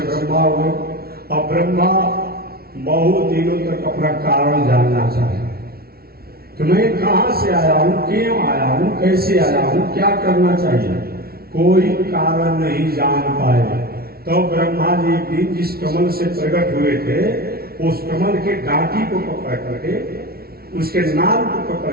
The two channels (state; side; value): late; left; 0.44 ms